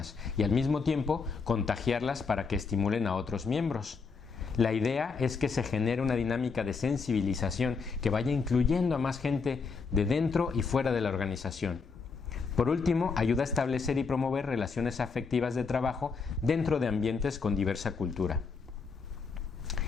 y al mismo tiempo contagiarlas para que estimulen a otros miembros. La idea es que se genere una dinámica de sensibilización que vaya incluyendo a más gente de dentro y fuera de la organización. Por último, ayuda a establecer y promover relaciones afectivas de trabajo dentro de ambientes con diversa cultura.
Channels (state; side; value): quieter; right; 4.9 dB